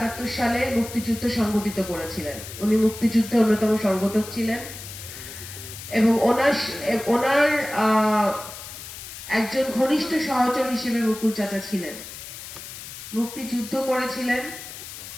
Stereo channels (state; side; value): noise; left; hiss, 12 dB below the sound